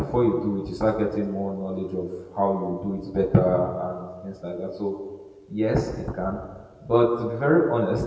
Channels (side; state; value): both; identical; correlation 1.00